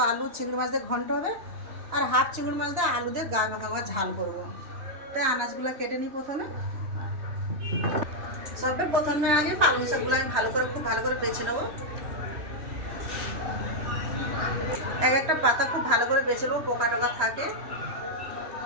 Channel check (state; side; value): late; left; 3.1 ms